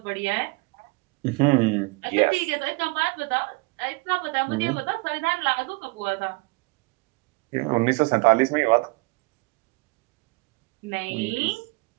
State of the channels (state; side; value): quieter; left; 25.8 dB